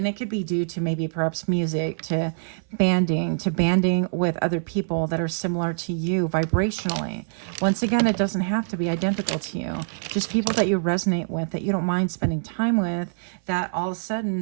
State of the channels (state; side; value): silent; left; 57 dB below the other